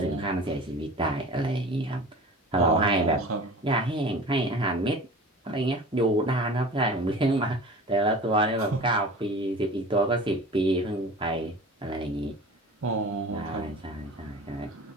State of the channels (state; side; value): normal; both; correlation 0.39